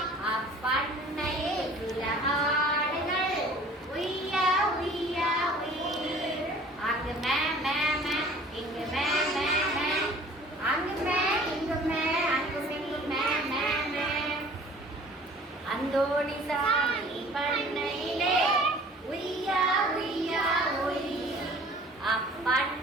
அப்பண்ணையில் சில ஆடுகள் உய்யா உய்யா உய். அங்கு மே மே மே இங்கு மே மே மே. அங்கு மே இங்கு மே அங்கும் இங்கு மே மே மே. அந்தோணிசாமி பண்ணையிலே உய்யா உய்யா உய்.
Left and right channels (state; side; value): normal; both; correlation 0.49